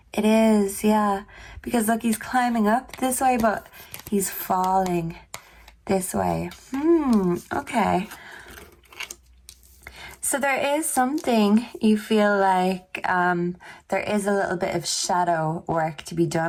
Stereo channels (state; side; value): identical; both; correlation 1.00